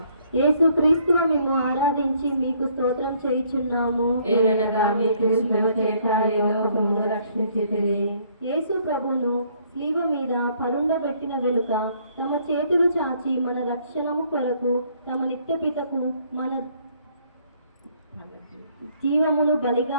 యేసు క్రీస్తువు మేము ఆరాధించి మీకు స్తోత్రం చేయుచున్నాము. ఏలనగా మీ క్రీస్తుల చేత ఈ లోకమును రక్షించితిరి. యేసు ప్రభువును శిలువ మీద పరుండబెట్టిన వెనుక తమ చేతులు చాచి మన రక్షణము కొరకు తమ నిత్యపితకు మన జీవమును బలిగా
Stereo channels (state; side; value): inverted; both; correlation -0.65